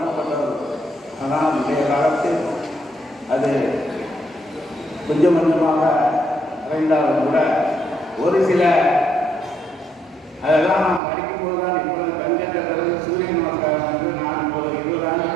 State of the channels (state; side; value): drops out; left; at 11.0 s